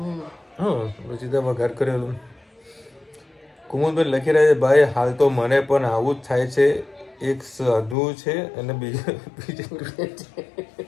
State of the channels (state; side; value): drops out; right; at 8.0 s